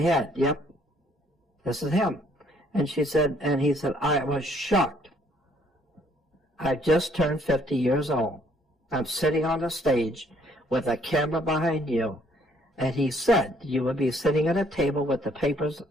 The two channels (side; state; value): both; normal; correlation 0.64